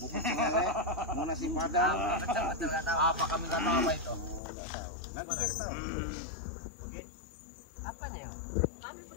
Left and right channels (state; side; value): drops out; right; at 4.4 s